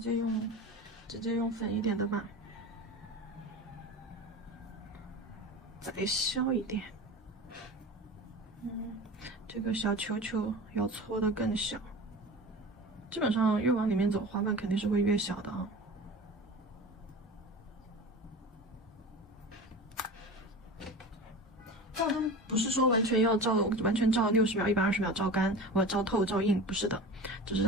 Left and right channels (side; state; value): both; normal; correlation 0.33